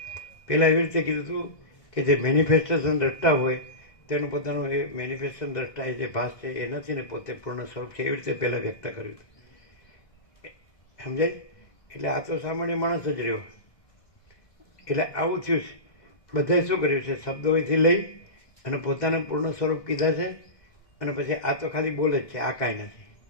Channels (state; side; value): late; right; 2.0 ms